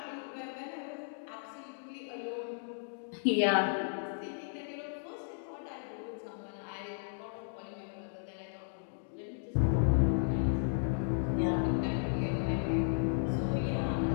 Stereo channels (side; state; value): right; silent; digital silence